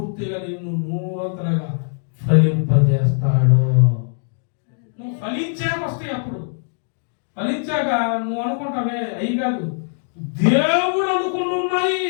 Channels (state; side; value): silent; right; digital silence